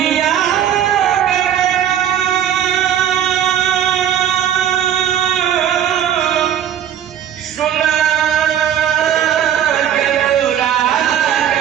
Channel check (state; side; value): quieter; left; 10.0 dB